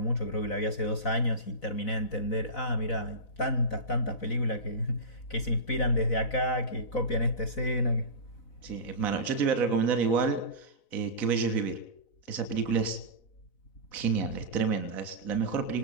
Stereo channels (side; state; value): right; late; 4.0 ms